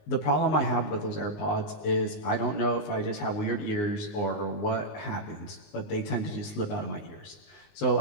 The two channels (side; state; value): right; late; 19 ms